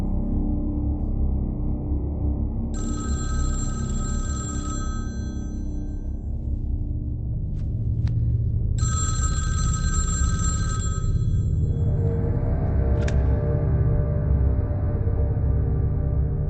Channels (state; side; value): identical; both; correlation 1.00